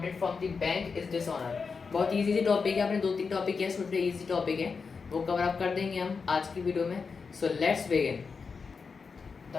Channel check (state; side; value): quieter; right; 5.1 dB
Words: from the bank is dishonour. बहुत इजी टॉपिक है, आपने 2-3 टॉपिक है, छोटे इजी टॉपिक है, वो कवर अप कर देंगे हम आज की वीडियो में। So let's begin. तो